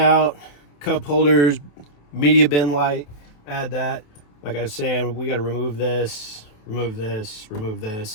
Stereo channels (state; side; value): late; right; 28 ms